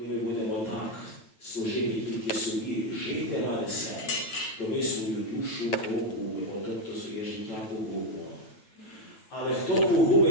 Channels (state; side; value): late; right; 9.2 ms